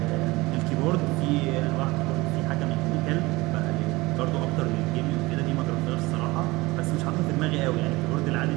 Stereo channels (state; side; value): quieter; left; 21.6 dB